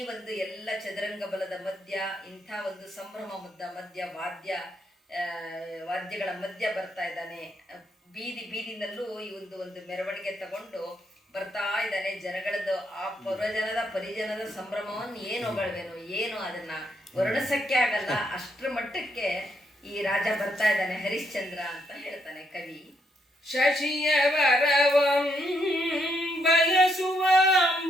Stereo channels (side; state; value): both; normal; correlation 0.76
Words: ಒಂದು ಎಲ್ಲ ಚದುರಂಗ ಬಲದ ಮಧ್ಯ ಇಂಥ ಒಂದು ಸಂಭ್ರಮ ಮಧ್ಯ ವಾದ್ಯಗಳ ಮಧ್ಯ ಬರ್ತಾ ಇದ್ದಾನೆ. ಬೀದಿನಲ್ಲೂ ಈ ಒಂದು ಮೆರವಣಿಗೆ ತಗೊಂಡು ಬರ್ತಾ ಇದ್ದಾನೆ. ಜನಗಳದ್ದು ಆ ಪುರಜನದ ಪರಿಜನದ ಸಂಭ್ರಮವನ್ನು ಏನು ಹೊಗಳ್ವೇನು, ಏನು ಅದನ್ನ ವರ್ಣಿಸಕ್ಕೆ ಆಗಲ್ಲ, ಅಷ್ಟರ ಮಟ್ಟಕ್ಕೆ ಈ ರಾಜ ಬರ್ತಾ ಇದ್ದಾನೆ ಹರಿಶ್ಚಂದ್ರ ಅಂತ ಹೇಳ್ತಾನೆ ಕವಿ. ಶಶಿಯ ವರವಂ ಬಯಸುವ